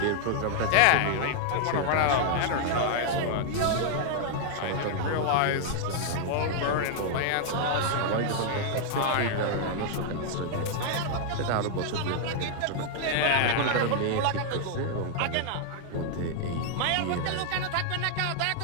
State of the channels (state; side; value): different; both; correlation 0.00